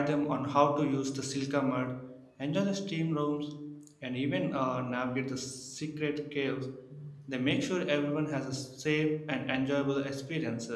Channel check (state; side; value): identical; both; correlation 1.00